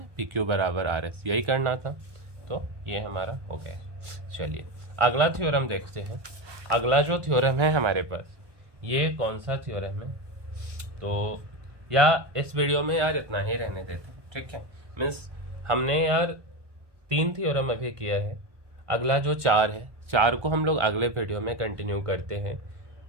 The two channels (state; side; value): late; left; 1.2 ms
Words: PQ बराबर RS, यही करना था। तो ये हमारा हो गया। चलिए, अगला थ्योरम देखते हैं। अगला जो थ्योरम है हमारे पास, ये कौन सा थ्योरम है? तो या इस वीडियो में यार इतना ही रहने देते, ठीक है। मीन्स हमने यार 3 थ्योरम अभी किया है। अगला जो 4 है, 4 को हम लोग अगले वीडियो में कंटिन्यू करते हैं।